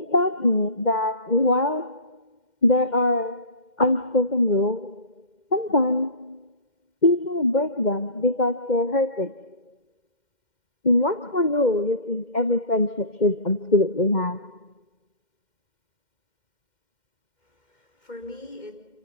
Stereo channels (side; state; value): right; late; 2.1 ms